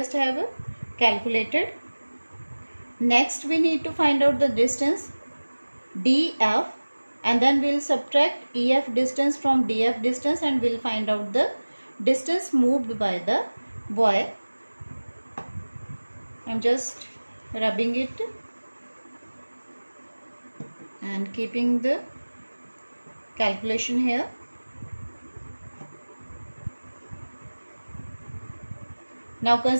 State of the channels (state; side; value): inverted; both; correlation -1.00